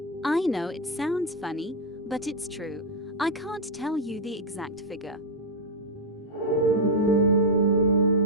I know it sounds funny, but it's true. I can't tell you the exact figure.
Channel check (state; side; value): normal; both; correlation -0.02